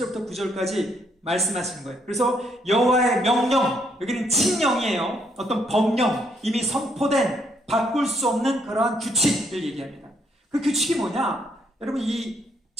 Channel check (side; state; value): both; normal; correlation 0.71